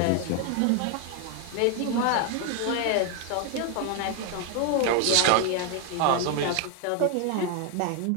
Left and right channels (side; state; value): both; different; correlation 0.01